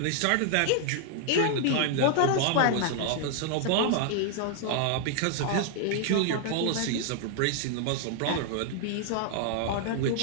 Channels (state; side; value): different; both; correlation 0.00